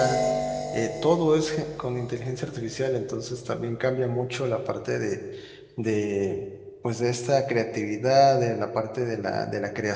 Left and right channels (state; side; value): identical; both; correlation 1.00